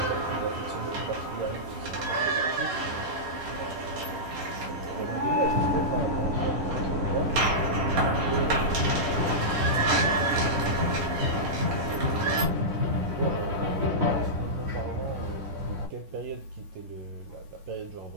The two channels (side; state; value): left; late; 11 ms